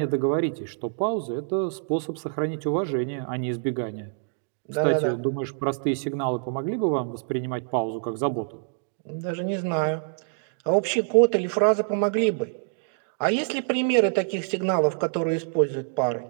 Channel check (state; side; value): silent; left; digital silence